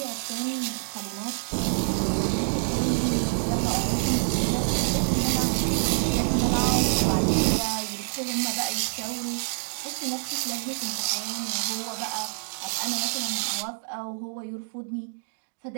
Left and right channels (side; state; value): left; silent; digital silence